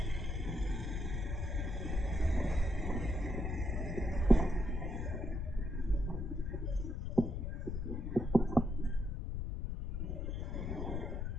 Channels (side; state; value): left; noise; rumble, 2 dB below the sound